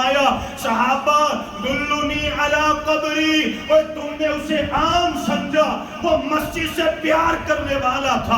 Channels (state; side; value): identical; both; correlation 1.00